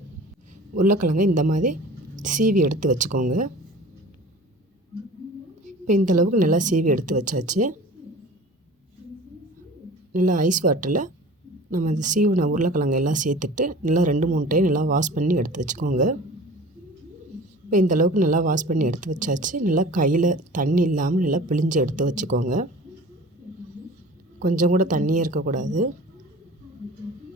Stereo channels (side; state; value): both; normal; correlation 0.42